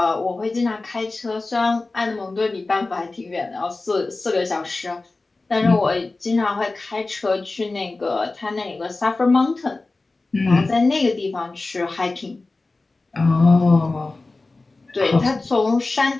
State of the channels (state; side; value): quieter; right; 3.4 dB